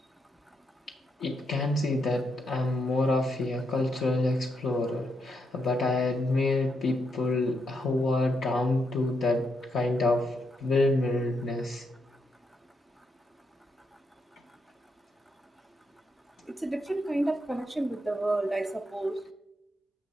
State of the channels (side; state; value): both; normal; correlation 0.80